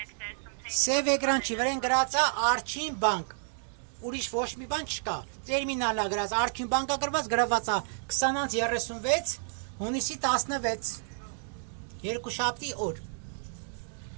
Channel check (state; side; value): silent; left; digital silence